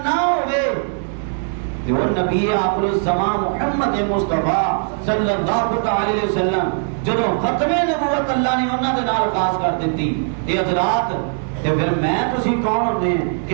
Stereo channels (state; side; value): silent; left; 66 dB below the other